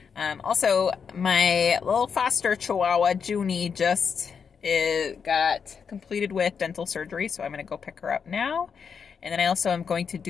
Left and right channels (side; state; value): right; quieter; 6.4 dB